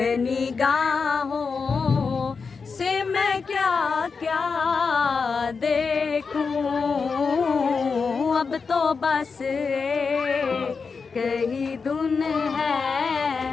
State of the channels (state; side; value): quieter; right; 5.1 dB